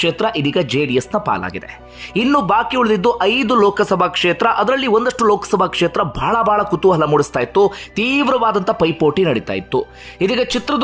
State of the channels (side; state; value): both; identical; correlation 1.00